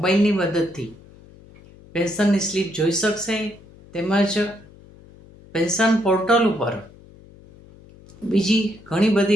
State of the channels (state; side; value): noise; left; hum, 23 dB below the sound